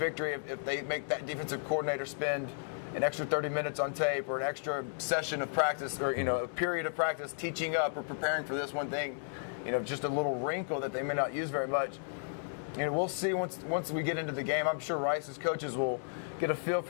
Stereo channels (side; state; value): right; silent; digital silence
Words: if they make that defensive coordinator spend an extra 30 minutes on tape or an extra session of practice or, a period of practice teaching up or preparing for this one thing, just a little wrinkle that they may not use very much. We'll see once we get into the game. I'm sure Rice's coaches will get a feel